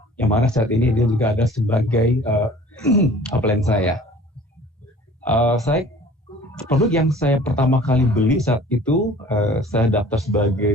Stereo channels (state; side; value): normal; both; correlation 0.48